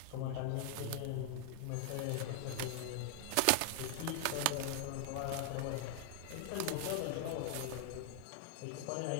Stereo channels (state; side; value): different; both; correlation 0.00